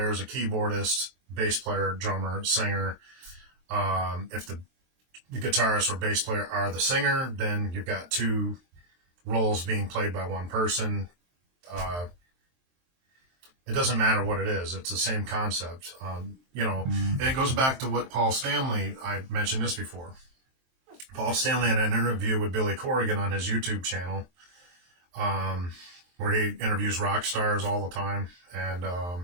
a keyboardist, bass player, drummer, singer. If the guitarist or bass player are the singer, then you've got two roles being played by one person. It doesn't matter what it is. It's the same concept, and it goes back to what Paul Stanley, I mentioned this before. Paul Stanley had an interview with Billy Corrigan on his YouTube channel, where he interviews rock stars all the time. And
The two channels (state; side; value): late; left; 23 ms